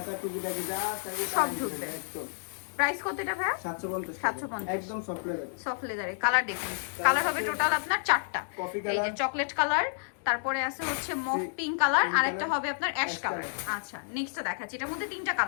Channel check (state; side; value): silent; right; digital silence